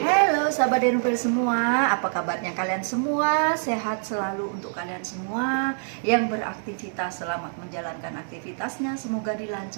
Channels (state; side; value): silent; left; digital silence